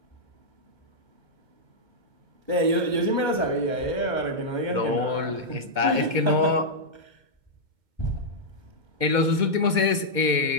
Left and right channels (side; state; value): left; late; 2.2 ms